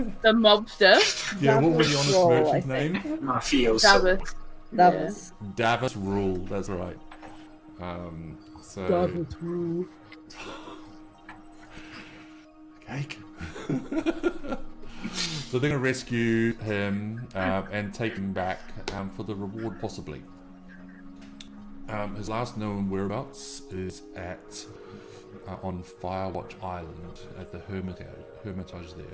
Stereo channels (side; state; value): both; identical; correlation 1.00